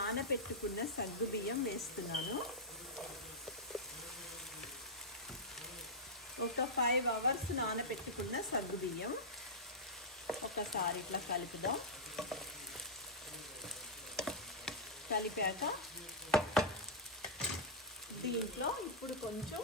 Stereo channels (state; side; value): normal; both; correlation -0.07